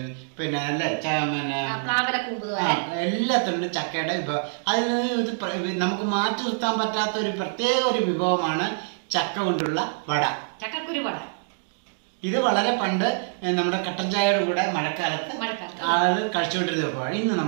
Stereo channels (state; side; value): silent; left; digital silence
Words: പിന്നെ അല്ലേ, എല്ലാത്തിനും ചക്കയുടെ വിഭവം. അതിൽ നമുക്ക് മാറ്റി നിർത്താൻ പറ്റാത്ത ഒരു പ്രത്യേക ഒരു വിഭവമാണ് ചക്ക കൊണ്ടുള്ള വട, ചക്കക്കുരു വട. ഇത് വളരെ പണ്ട് നമ്മുടെ കട്ടൻ ചായയുടെ കൂടെ മഴക്കാലത്ത് ആളുകൾ കഴിച്ചുകൊണ്ടിരുന്ന വിഭവമാണ്. ഇന്ന്